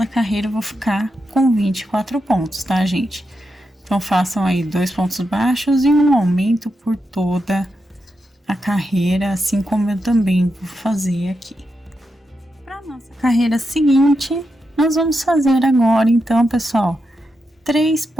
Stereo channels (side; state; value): both; normal; correlation 0.86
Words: carreira eu vou ficar com 24 pontos, tá, gente? Então façam aí 2 pontos baixos e um aumento por toda a carreira, assim como eu também vou fazer aqui. Para nossa carreira seguinte, nós vamos fazer agora, então, pessoal, 3